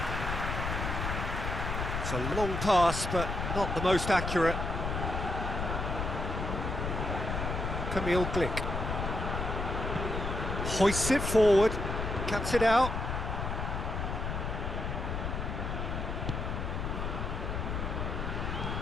It's a long pass, but not the most accurate. Camille Glick hoists it forward, cuts it out.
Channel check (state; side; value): noise; left; rumble, 2 dB below the sound